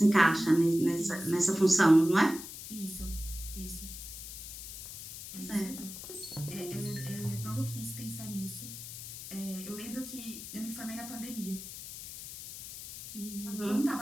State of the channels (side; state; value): left; noise; hiss, 11 dB below the sound